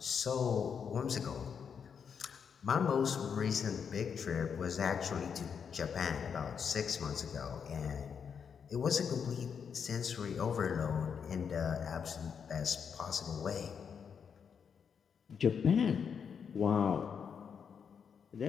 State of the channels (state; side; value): quieter; right; 6.9 dB